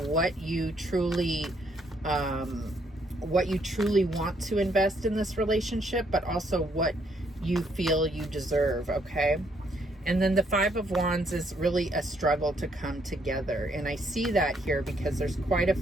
what you truly want to invest in this relationship, but also what you feel you deserve, okay? And then the Five of Wands is really a struggle to come together. And I see that here because there's quite a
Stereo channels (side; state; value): both; normal; correlation 0.71